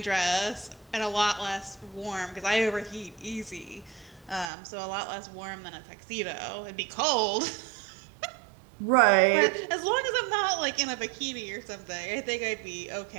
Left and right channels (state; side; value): drops out; left; at 4.5 s